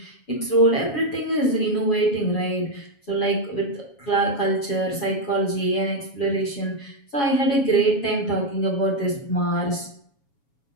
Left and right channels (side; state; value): right; late; 7.2 ms